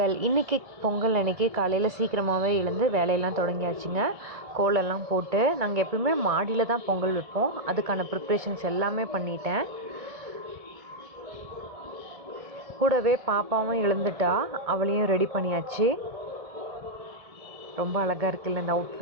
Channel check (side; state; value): left; late; 1.7 ms